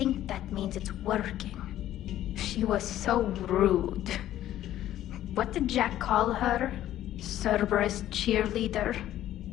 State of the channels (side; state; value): right; quieter; 12.9 dB